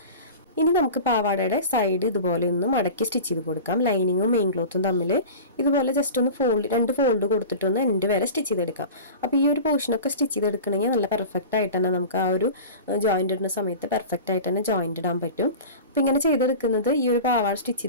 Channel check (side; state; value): both; inverted; correlation -0.34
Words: ഇനി നമുക്ക് പാവാടയുടെ സൈഡ് ഇതുപോലെ ഒന്ന് മടക്കി സ്റ്റിച്ച് ചെയ്ത് കൊടുക്കാം. ലൈനിങ്ങും മെയിൻ ക്ലോത്തും തമ്മിൽ ഇതുപോലെ ജസ്റ്റ് ഒന്ന് 2 ഫോൾഡ് കൊടുത്തിട്ടൊന്ന് എൻഡ് വരെ സ്റ്റിച്ച് ചെയ്തെടുക്കാം. അപ്പോൾ ഈ ഒരു പോർഷനൊക്കെ സ്റ്റിച്ച് ചെയ്തെടുക്കണമെങ്കിൽ നല്ല പെർഫെക്റ്റ് ആയിട്ട് തന്നെ നമുക്ക് ആ ഒരു ജോയിൻ്റ് ഇടുന്ന സമയത്ത് പെർഫെക്റ്റ് ആയിട്ട് തന്നെ ജോയിൻ്റ് ഇടാൻ പറ്റും. അപ്പോൾ ഇങ്ങനെ ചെയ്തെടുക്കുന്നത് ഈ ഒരു പാവാട സ്റ്റിച്ച്